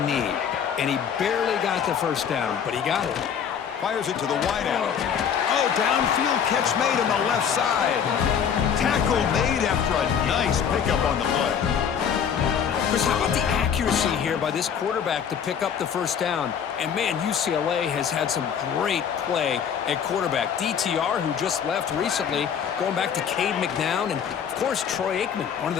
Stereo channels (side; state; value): right; quieter; 7.8 dB